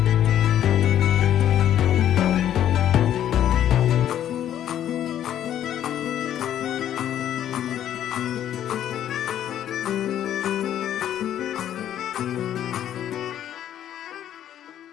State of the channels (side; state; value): right; quieter; 10.9 dB